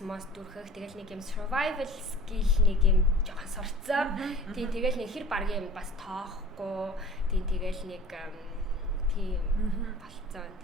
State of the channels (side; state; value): both; normal; correlation 0.44